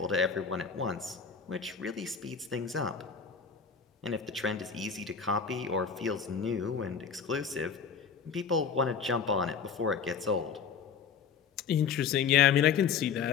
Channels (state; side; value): quieter; right; 6.4 dB